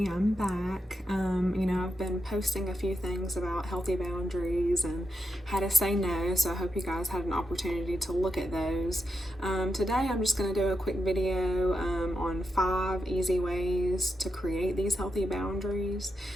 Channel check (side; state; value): both; normal; correlation 0.86